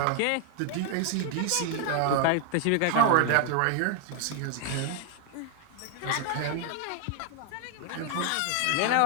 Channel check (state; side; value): different; both; correlation 0.00